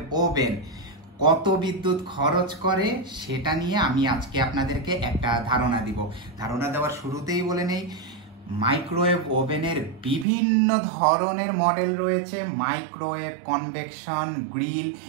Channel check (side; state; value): left; drops out; at 10.2 s